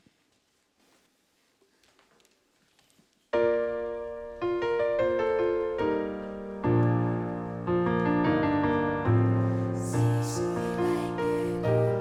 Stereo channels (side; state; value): both; identical; correlation 1.00